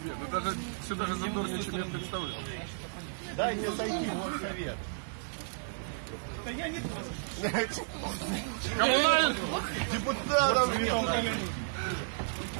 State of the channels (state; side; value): silent; left; digital silence